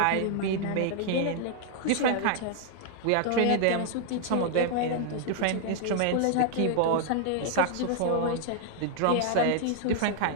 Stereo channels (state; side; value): different; both; correlation 0.00